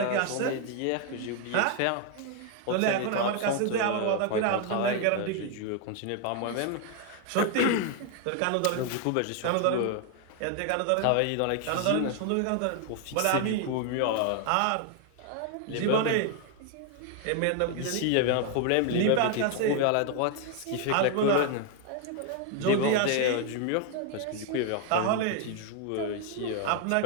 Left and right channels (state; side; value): different; both; correlation 0.01